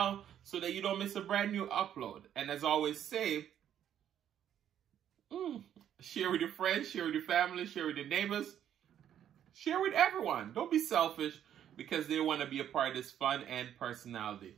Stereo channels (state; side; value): quieter; left; 10.1 dB